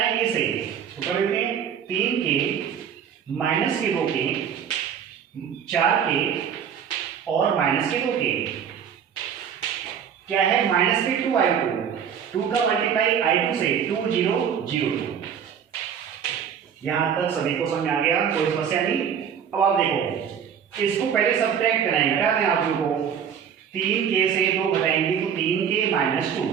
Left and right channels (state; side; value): quieter; left; 8.0 dB